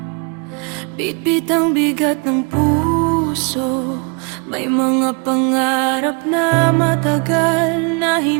bitbit ang bigat ng puso. May mga pangarap na matagal na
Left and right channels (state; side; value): quieter; left; 35.1 dB